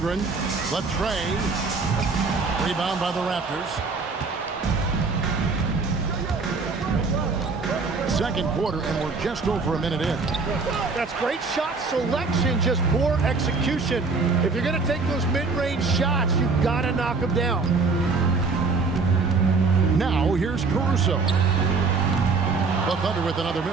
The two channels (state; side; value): quieter; left; 4.3 dB